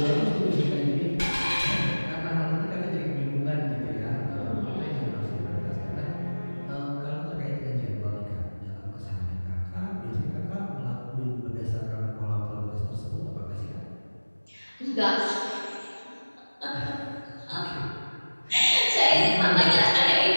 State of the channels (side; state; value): both; inverted; correlation -1.00